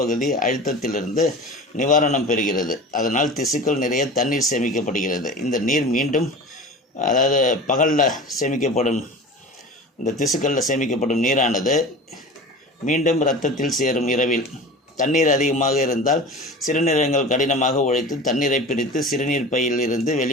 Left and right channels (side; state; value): both; normal; correlation 0.35